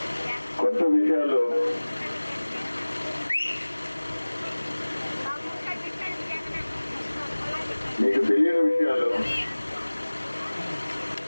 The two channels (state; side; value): inverted; both; correlation -1.00